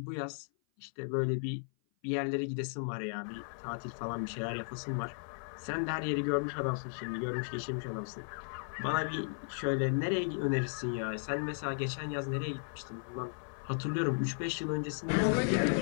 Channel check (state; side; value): silent; right; 54 dB below the other